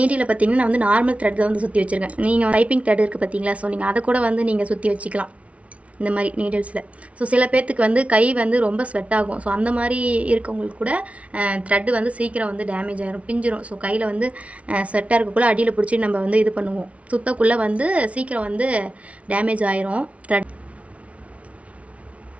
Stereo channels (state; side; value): late; left; 0.064 ms